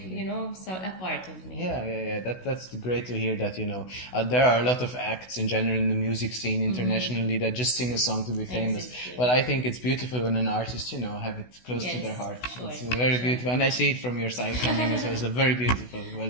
You know, so a part of me. Yeah. That's great to hear that, you know, there are a lot of acts in general in the music scene internationally that just sing a song to be famous. Exactly. But I think it's beautiful when an artist, you know, have it close to their heart. Sure, it's very beautiful. And I see it from your side coming as well. It's very beautiful. Well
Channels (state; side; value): late; right; 16 ms